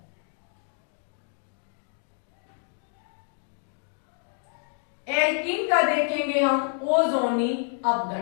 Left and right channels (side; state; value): right; silent; 59 dB below the other